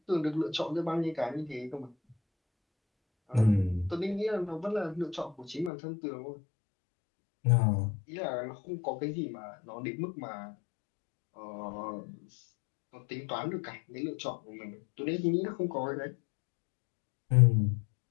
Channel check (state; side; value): drops out; right; at 5.7 s